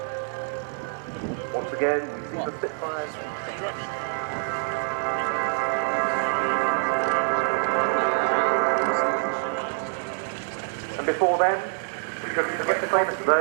Once again, we see the Spitfires. And before then, the famous of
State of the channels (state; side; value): silent; left; 56 dB below the other